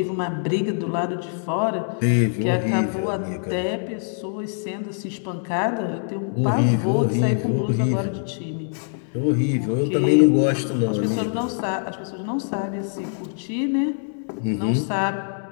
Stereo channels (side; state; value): right; silent; 63 dB below the other